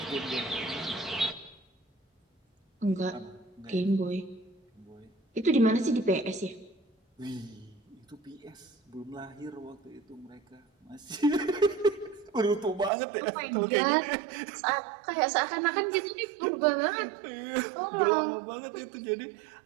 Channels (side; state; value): left; drops out; at 12.9 s